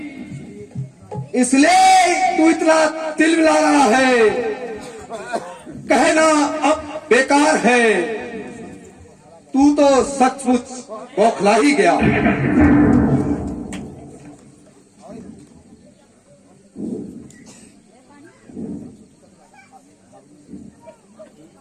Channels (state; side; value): identical; both; correlation 1.00